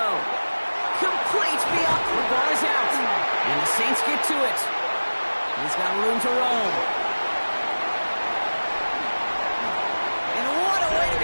Complete beyond. The ball is out. And the Saints get to it. He's got room to roam. And what a way to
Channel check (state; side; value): inverted; both; correlation -1.00